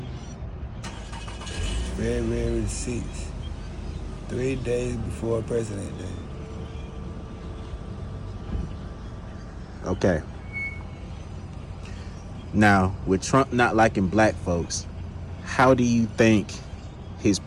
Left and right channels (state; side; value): identical; both; correlation 1.00